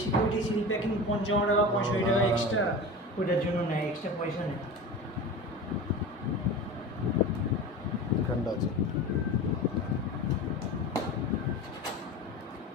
সিকিউরিটি সিল প্যাকিং 55 টাকা 65 টাকা এক্সট্রা, ওইটার জন্য নেয়, এক্সট্রা পয়সা নেয়। ঠান্ডা আছে।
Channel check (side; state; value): both; normal; correlation 0.31